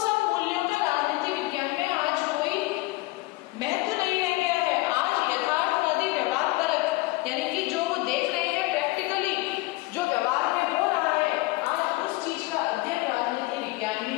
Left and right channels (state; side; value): quieter; right; 21.7 dB